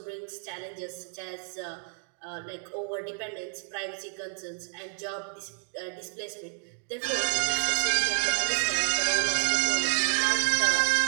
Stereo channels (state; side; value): silent; left; 58 dB below the other